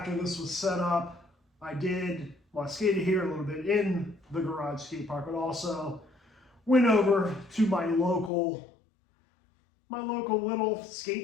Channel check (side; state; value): right; drops out; at 8.3 s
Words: this was set up, I skated here a little bit in the garage skate park, but also went over to my local little